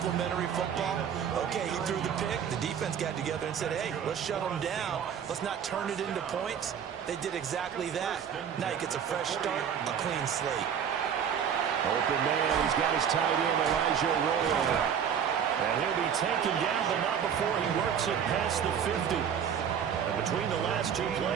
football? Okay, he threw the pick. The defense got together and said, hey, let's shut them down. Let's not turn it into points. They did exactly that. Now he gets a fresh start, a clean slate. Open man, he's got his tight end, Elijah Royal. And he'll be taken down, but not before he works it past the 50. And between the last two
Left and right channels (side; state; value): left; quieter; 8.1 dB